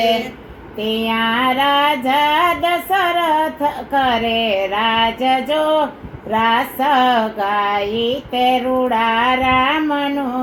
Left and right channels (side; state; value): both; identical; correlation 1.00